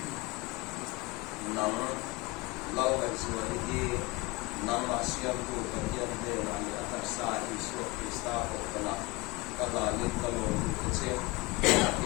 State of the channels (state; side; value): quieter; right; 23.8 dB